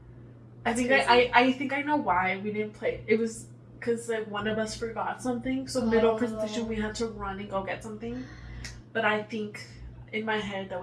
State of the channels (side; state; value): both; identical; correlation 1.00